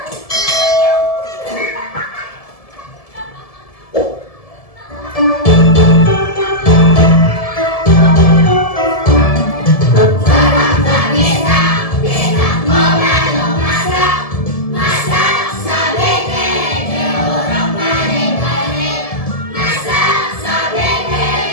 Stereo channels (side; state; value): right; late; 1.7 ms